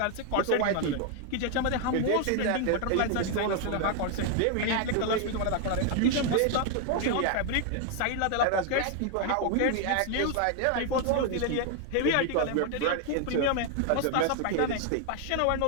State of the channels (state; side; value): different; both; correlation 0.00